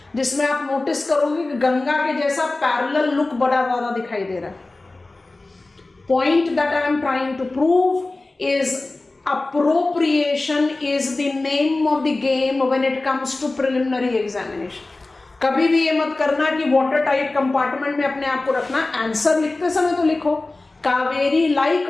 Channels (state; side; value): quieter; right; 3.1 dB